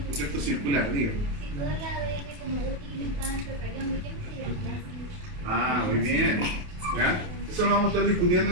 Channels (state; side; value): late; left; 28 ms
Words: ¿no es cierto?, circular, digo. Si todo el ADN como útil está en procarión, ¿de qué me sirve el plástico? Ah, muy bien. ¿Ya? Eso lo vamos a estar discutiendo